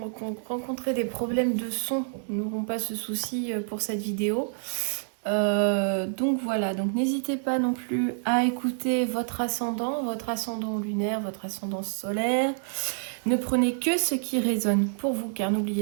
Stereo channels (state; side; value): silent; left; digital silence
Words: rencontré des problèmes de son n'auront pas ce souci pour cette vidéo. Donc voilà, donc n'hésitez pas non plus à écouter votre ascendant lunaire, votre ascendant solaire. Ne prenez que ce qui résonne pour vous, car